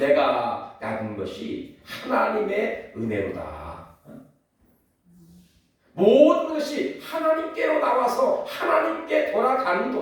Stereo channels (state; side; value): identical; both; correlation 1.00